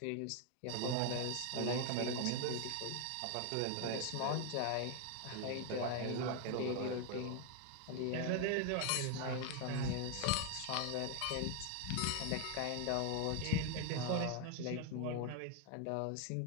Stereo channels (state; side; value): different; both; correlation 0.01